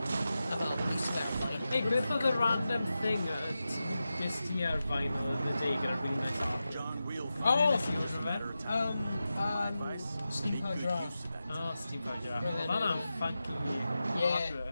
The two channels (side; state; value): both; inverted; correlation -0.92